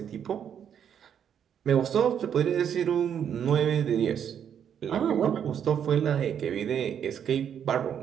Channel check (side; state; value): left; quieter; 8.6 dB